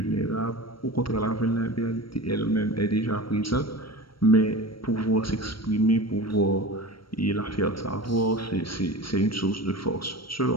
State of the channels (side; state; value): right; late; 0.74 ms